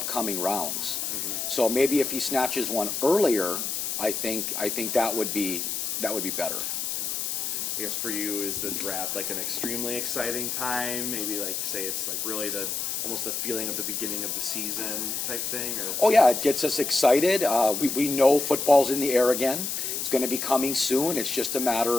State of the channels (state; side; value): noise; left; hiss, 2 dB below the sound